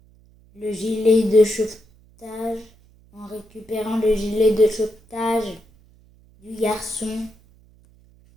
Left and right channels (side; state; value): right; noise; hum, 29 dB below the sound